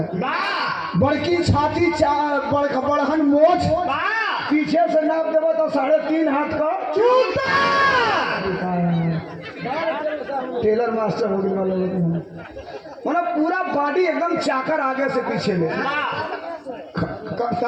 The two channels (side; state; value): both; identical; correlation 1.00